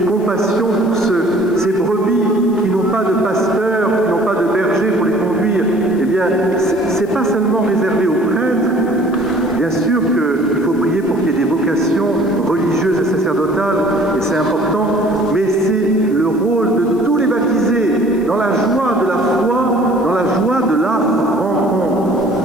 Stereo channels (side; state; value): left; noise; hiss, 27 dB below the sound